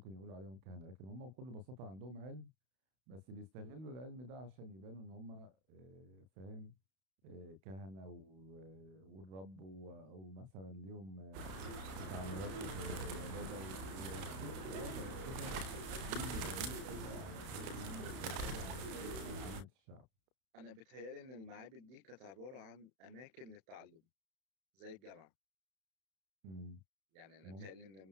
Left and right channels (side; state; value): left; late; 31 ms